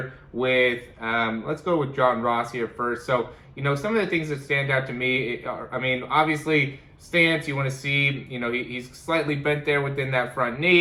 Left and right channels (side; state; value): both; identical; correlation 1.00